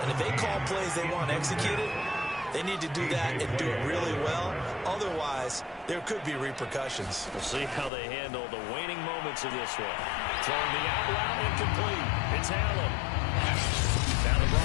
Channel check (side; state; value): right; drops out; at 7.9 s